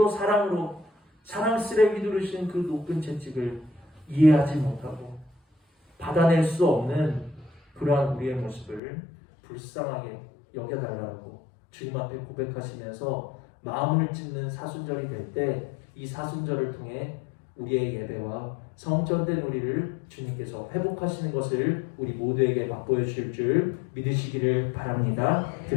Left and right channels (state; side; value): drops out; right; at 8.8 s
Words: 사랑으로 사랑스레 휘두르신 그 높은 채찍을 이해하지 못하고 받아낼 수 없는 그러한 우리의 모습을 불쌍하게 여겨달라고 주님 앞에 고백하시면서 마음을 찢는 사순절이 될 때 이 사순절을 통해 우리의 예배와 성전된 우리를 주님께서 회복하시는 것을 우리 모두에게 맛보여 주실 줄 믿으시기를 바랍니다.